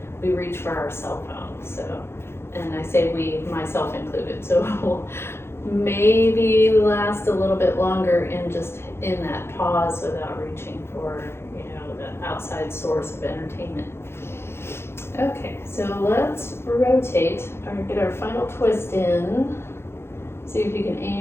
we reach for our cell phone. So, and I say we, myself included. So we'll maybe last a little bit longer in that pause without reaching for, the outside source of entertainment. Okay, so let's rotate or get our final twist in. See if you can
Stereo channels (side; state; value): right; late; 0.12 ms